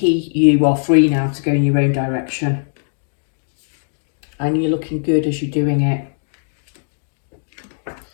are free now to go in your own direction. And you're looking good as you're doing it.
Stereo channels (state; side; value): silent; right; digital silence